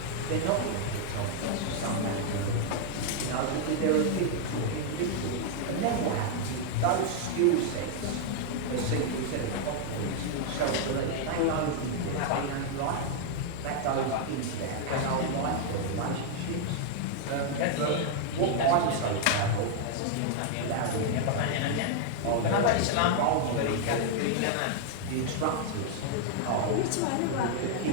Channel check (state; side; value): different; both; correlation 0.00